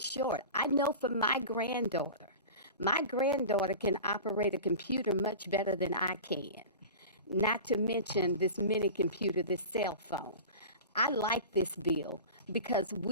I know for my granddaughter can operate a computer much better than I can. Not to mention this mini computer, this cell phone. I like this bill because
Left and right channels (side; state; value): both; inverted; correlation -0.33